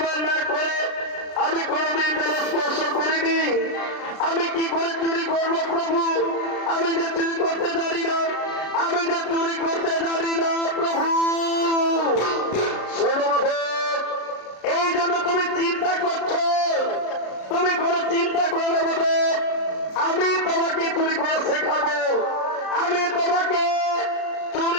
না করে আমি কোনোদিন তারা স্পর্শ করিনি। আমি কি করে চুরি করবো প্রভু? আমি যে চুরি করতে জানি না, আমি যে চুরি করতে জানি না প্রভু। শোনো মাধব, এই জন্য তুমি চিন্তা করছো। তুমি কোনো চিন্তা করো না মাধব, আমি তোমাকে চুরি করা শেখাবো। আমি তোমাকে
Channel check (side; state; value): right; late; 33 ms